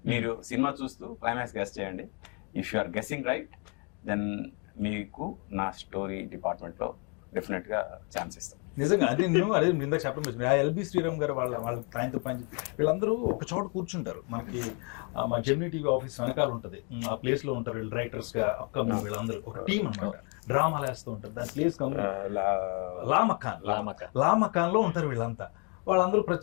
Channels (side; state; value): right; quieter; 35.9 dB